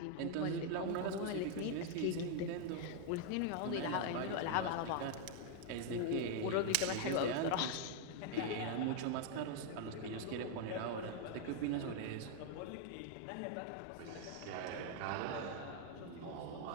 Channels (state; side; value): different; both; correlation 0.00